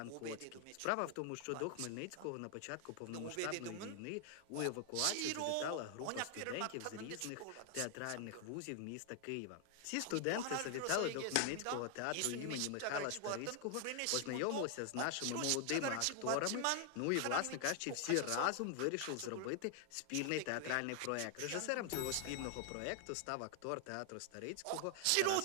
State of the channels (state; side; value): different; both; correlation 0.00